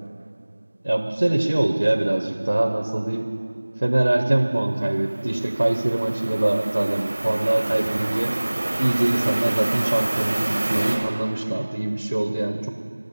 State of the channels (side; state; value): both; inverted; correlation -1.00